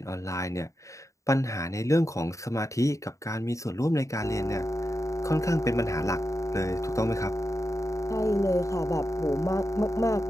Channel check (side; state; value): right; late; 0.15 ms